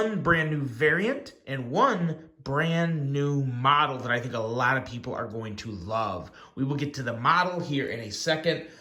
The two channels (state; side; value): identical; both; correlation 1.00